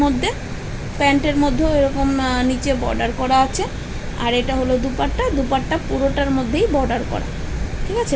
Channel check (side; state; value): both; identical; correlation 1.00